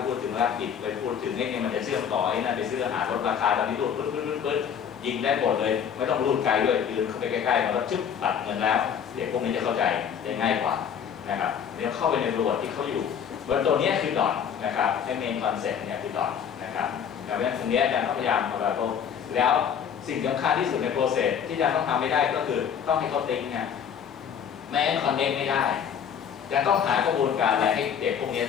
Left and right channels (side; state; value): right; quieter; 8.0 dB